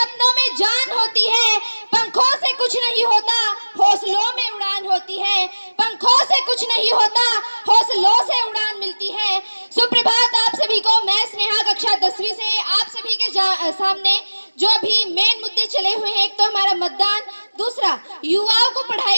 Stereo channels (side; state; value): both; inverted; correlation -1.00